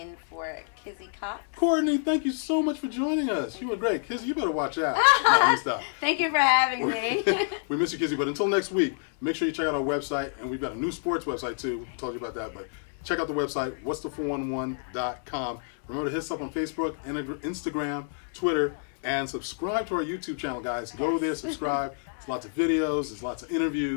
for Kizzy Cox. Courtney, thank you so much for joining us. You were great. Kizzy, you better watch out. No, stop. Thank you for having me. We miss you, Kizzy. But until next week, make sure you check out our website. And we've got a new sports website, too. We told you about that. But check out the website, what's411.com. Remember to hit us up on Facebook, Instagram, Twitter, and subscribe to our YouTube channel, guys. Go there, subscribe. There's lots of videos. There's lots of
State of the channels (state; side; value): silent; right; digital silence